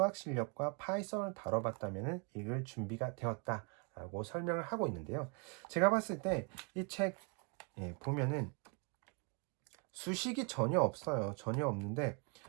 실력과 파이썬을 다뤄봤다면 읽을 준비가 되었다라고 설명을 하고 있는데요. 제가 봤을 때 이 책 보면은 수식이 전혀 없어요. 전혀 없는데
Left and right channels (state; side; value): quieter; left; 34.6 dB